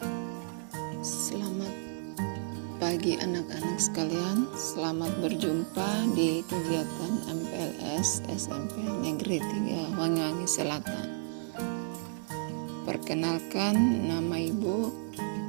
Selamat pagi anak-anak sekalian. Selamat berjumpa di kegiatan MPLS SMP Negeri 3 Wangi-Wangi Selatan. Perkenalkan, nama Ibu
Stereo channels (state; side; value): silent; left; 56 dB below the other